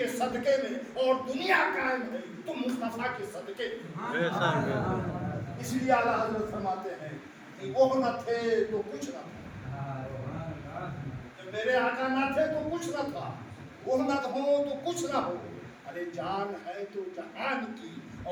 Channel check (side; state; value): both; identical; correlation 1.00